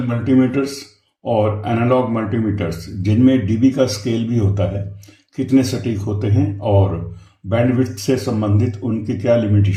मल्टीमीटर्स और एनालॉग मल्टीमीटर्स, जिनमें डीबी का स्केल भी होता है, कितने सटीक होते हैं और बैंडविड्थ से संबंधित उनकी क्या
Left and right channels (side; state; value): both; identical; correlation 1.00